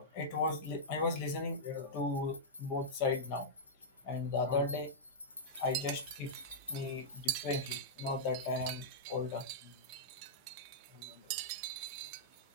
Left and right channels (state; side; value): normal; both; correlation -0.10